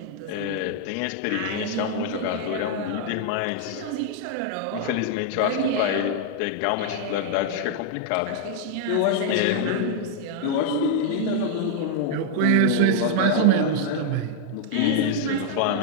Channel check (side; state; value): both; different; correlation -0.01